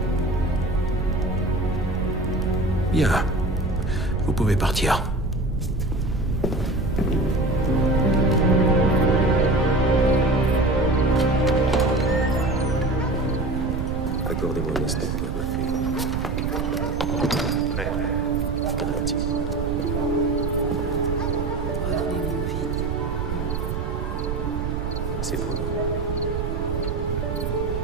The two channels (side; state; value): right; noise; rumble, 3 dB below the sound